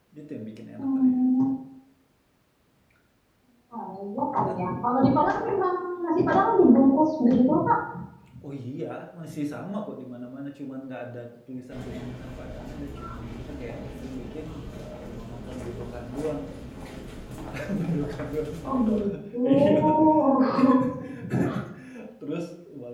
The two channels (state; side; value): identical; both; correlation 1.00